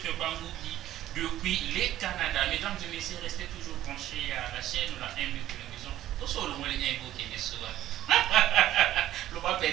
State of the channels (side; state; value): left; quieter; 13.3 dB